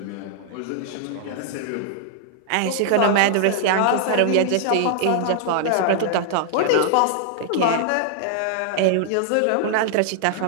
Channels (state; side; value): different; both; correlation -0.01